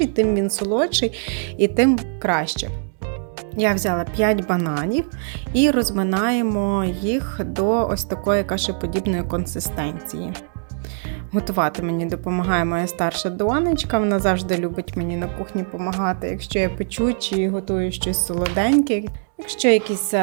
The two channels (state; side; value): silent; left; 64 dB below the other